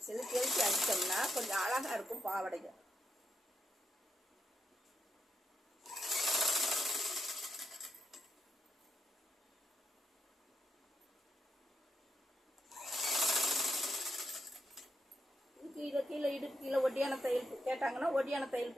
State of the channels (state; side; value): normal; both; correlation 0.82